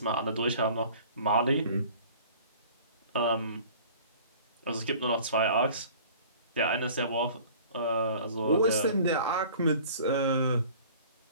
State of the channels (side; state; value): both; inverted; correlation -0.47